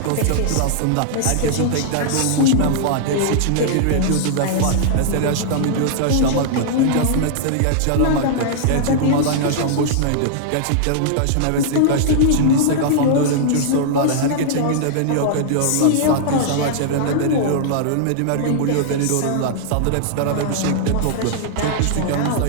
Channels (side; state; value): both; different; correlation -0.01